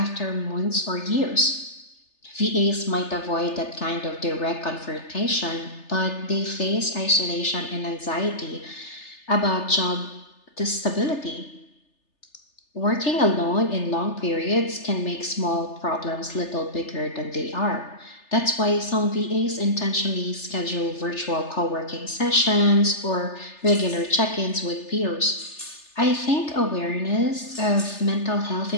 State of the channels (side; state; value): right; late; 3.3 ms